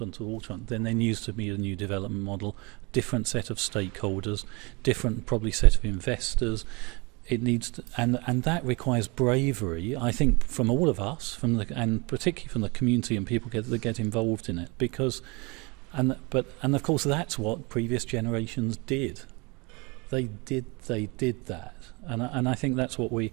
the waterfront, then there needs to be a new development model, different set of stakeholders, different probably set of investors. It needs to, and that requires bravery, I think, from all of us, and particularly from the community and people that get involved in it, because and of course that's what previous generations did. They did that, and I think that's what we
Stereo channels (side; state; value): left; quieter; 28.0 dB